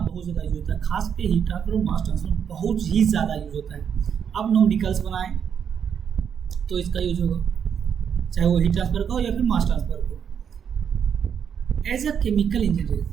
ज़्यादा यूज होता है। खास के हीट ट्रांसफर और मास ट्रांसफर बहुत ही ज़्यादा यूज होता है। आप न्यूमेरिकल्स बनाएं तो इसका यूज होगा, चाहे वो हीट ट्रांसफर का हो या फिर मास ट्रांसफर का हो। एज अ केमिकल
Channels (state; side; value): quieter; left; 7.7 dB